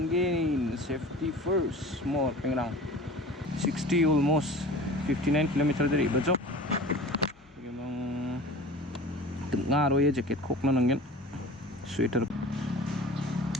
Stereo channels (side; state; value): both; normal; correlation 0.39